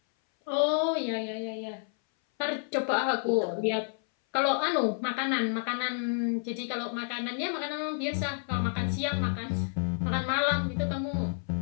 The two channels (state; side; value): silent; right; 58 dB below the other